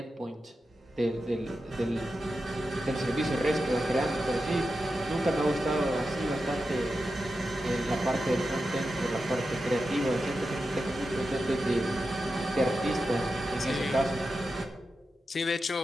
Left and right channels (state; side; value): normal; both; correlation 0.90